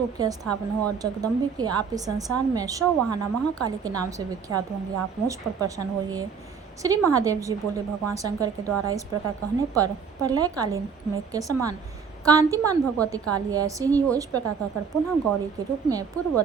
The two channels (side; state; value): left; quieter; 6.2 dB